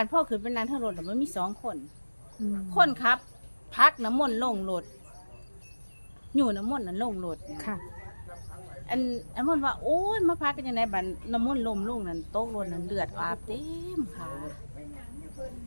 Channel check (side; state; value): both; inverted; correlation -1.00